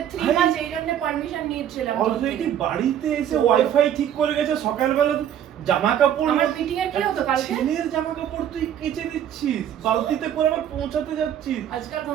3 মাস এই জন্য পারমিশন নিয়েছিলাম। অলরেডি বাড়িতে এসে ওয়াইফাই ঠিক করে গেছে, সকালবেলা জামা কাপড় আমার মিটিং এর কি হতো কালকে? ছেলের জামা কাপড় তুই কেচে দিচ্ছিস, বালতিতে করে আবার পৌঁছাতে যাচ্ছিস। আজকাল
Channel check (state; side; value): quieter; left; 10.1 dB